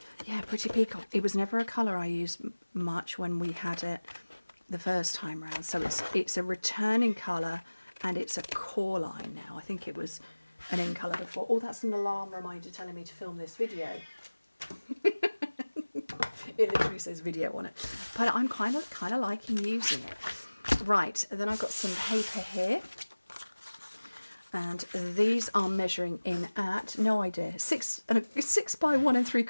Yeah, Pretty Peacock. It was never a colour I used much when we had it the first time round, so it's a returning colour and it's a core line now. I think it was an in colour before. Oh, that's an alarm reminder telling me to film this video. It literally says video on it, but I'm kind of liking using it. Right, and then I've got some paper here, and these are measuring in at, no idea, 6 by 1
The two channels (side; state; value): both; inverted; correlation -1.00